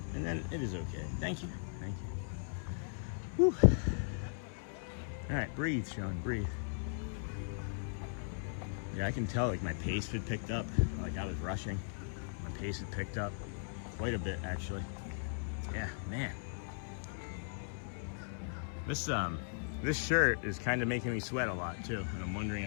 And then it is okay. Thank you. Whew. All right, breathe, Sean, breathe. Yeah, I can tell, like, my pace had picked up. Like, I was rushing. My pace had picked up quite a bit, actually. Yeah, man. This shirt is kind of making me sweat a lot, too. And I'm wondering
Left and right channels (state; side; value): silent; right; 53 dB below the other